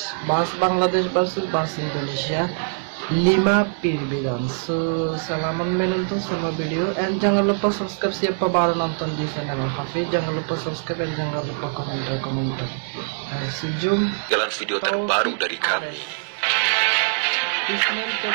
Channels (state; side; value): silent; left; digital silence